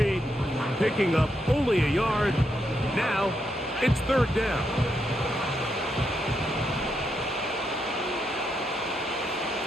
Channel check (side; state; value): both; normal; correlation 0.81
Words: picking up only a yard. Now, it's third down.